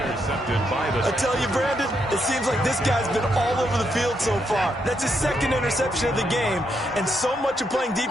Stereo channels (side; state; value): both; normal; correlation 0.79